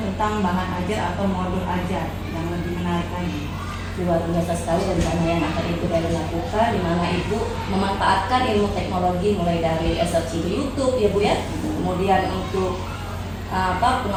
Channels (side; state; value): both; identical; correlation 1.00